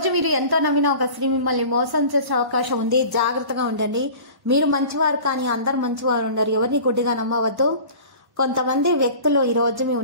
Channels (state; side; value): late; left; 1.1 ms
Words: మీరు ఎంతో నమ్మిన ఒక స్త్రీ మిమ్మల్ని మోసం చేసే అవకాశం ఉంది. జాగ్రత్తగా ఉండండి. మీరు మంచివారు కానీ అందరు మంచివారు ఉండరు. ఎవరిని గుడ్డిగా నమ్మవద్దు. కొంతమంది వ్యక్తులు ఈ రోజు మీ